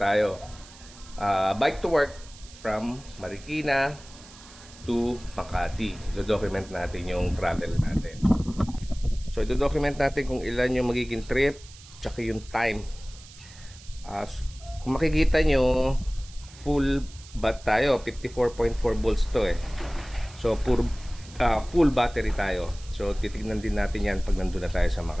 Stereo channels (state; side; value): noise; right; hiss, 20 dB below the sound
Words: Bike to work from Marikina to Makati. Do-document natin yung travel natin. So, do-document natin kung ilan yung magiging trip, tsaka yung time. Kung makikita nyo, full bat tayo. 54.4 volts to eh. So, full battery tayo. So, titignan din natin yan pag nandun na tayo sa